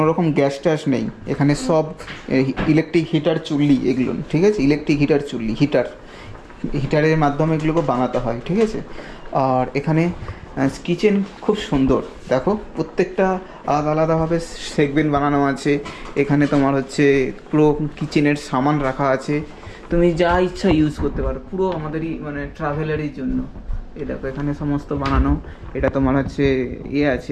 রকম গ্যাস ট্যাস নেই, এখানে সব ইলেকট্রিক হিটার চুল্লি এগুলো, ঠিক আছে। ইলেকট্রিক হিটার চুল্লি, হিটারের মাধ্যমে এগুলোকে বানাতে হয়, ঠিক আছে। আর এখানে কিচেন খুব সুন্দর, দেখো প্রত্যেকটা আলাদা আলাদাভাবে সেগমেন্ট বানানো আছে। এখানে তোমার হচ্ছে পুরো কিচেনের সামান রাখা আছে, তুমি যা ইচ্ছা ইউজ করতে পারো, পুরো আমাদেরই মানে ট্রাভেলারের জন্য। এই দেখো এখানে সমস্ত বানানো। এটা তোমার হচ্ছে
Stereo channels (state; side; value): identical; both; correlation 1.00